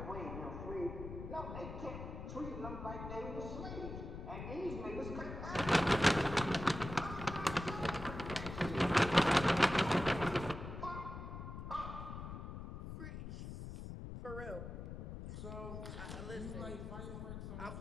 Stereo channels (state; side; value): noise; left; rumble, 8 dB below the sound